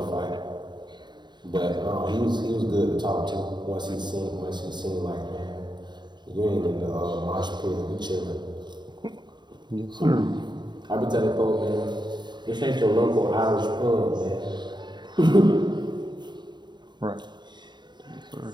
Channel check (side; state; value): left; late; 0.21 ms